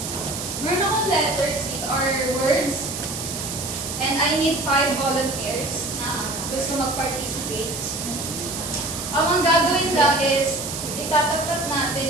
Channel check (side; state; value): right; noise; hiss, 6 dB below the sound